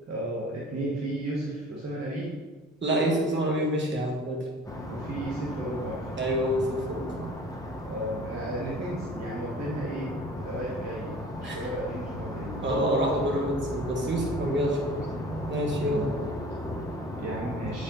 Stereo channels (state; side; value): normal; both; correlation 0.45